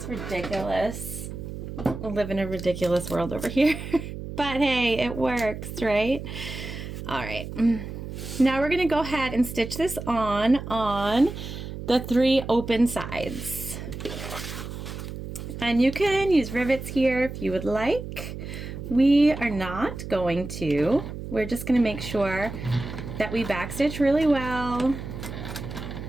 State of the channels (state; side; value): noise; right; hum, 9 dB below the sound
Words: ridiculous. I live in a ridiculous world over here. But hey, it works, right? All right. Now we're going to go ahead and stitch this on the 3 open sides. And you can use rivets here if you would like. We are not going to. We're just going to make sure that we backstitch really well.